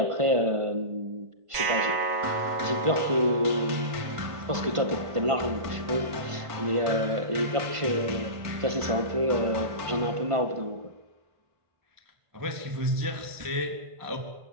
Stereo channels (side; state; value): left; late; 1.5 ms